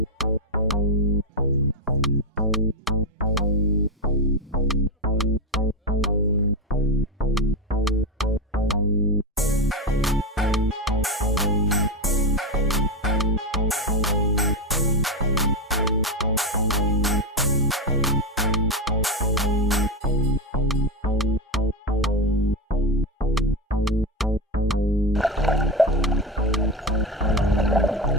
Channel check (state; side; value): normal; both; correlation 0.12